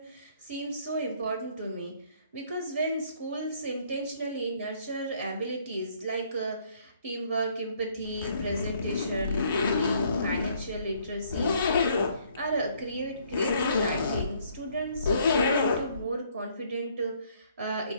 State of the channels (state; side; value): inverted; both; correlation -0.65